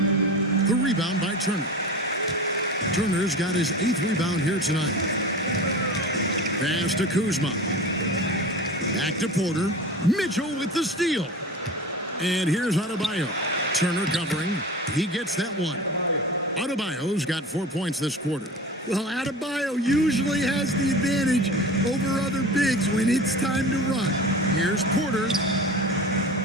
The rebound by Turner. Turner's got his 8th rebound here tonight. Pass to Kuzma. Back to Porter. Mitchell with the steal. And here's Adebayo. Turner covering. He gets that one. Adebayo's got 4 points this quarter. Well, Adebayo usually has the advantage over other bigs when it's time to run. Here's Porter.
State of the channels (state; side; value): normal; both; correlation 0.34